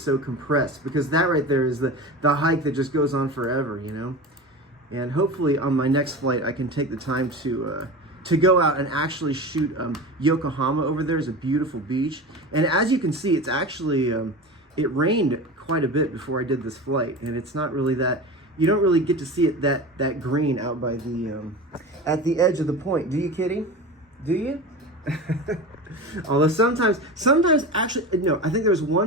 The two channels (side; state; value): both; normal; correlation 0.29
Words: compressed, because that right there is the hike that just goes on forever, you know? And hopefully on my next flight, I can take the time to go out and actually shoot Yokohama. Over there is a beautiful beach, and as you can see, it's actually it rained quite a bit before I did this flight, and it's not really that, you don't really get to see it that green out by the at the edge of the point, do you, Kitty? Do you? Although sometimes actually, no, I think there was